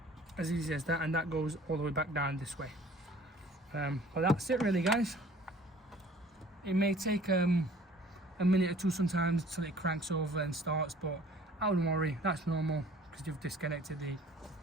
as easy as that, and that goes all the way back down this way. But that's it really, guys. It may take a minute or two sometimes till it cranks over and starts, but I wouldn't worry, that's normal, because you've disconnected the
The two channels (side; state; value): both; normal; correlation 0.52